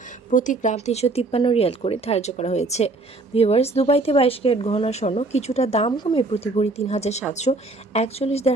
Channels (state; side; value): quieter; left; 3.2 dB